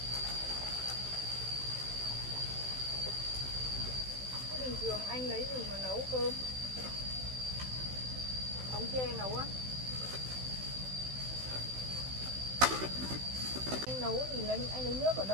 Bình thường anh lấy gì mà nấu cơm? Ống tre nấu á? Anh nấu thì anh lấy nước ở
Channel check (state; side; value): late; left; 16 ms